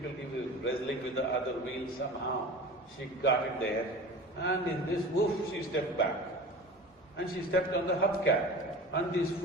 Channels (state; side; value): normal; both; correlation 0.36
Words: was wrestling with the other wheel somehow. She got it there, and in this woof, she stepped back. And she stepped on the hubcap, and these